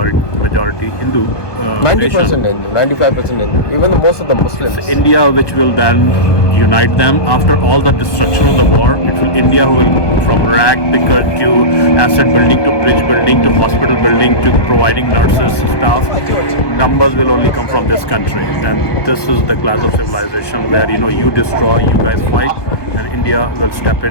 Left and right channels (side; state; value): right; late; 1.2 ms